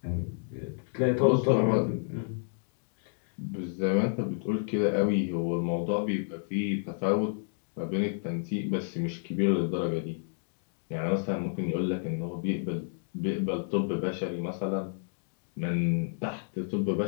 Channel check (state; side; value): silent; right; digital silence